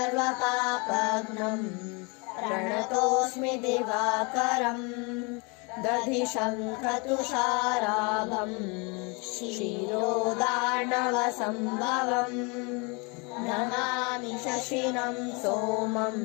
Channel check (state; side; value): quieter; right; 30.7 dB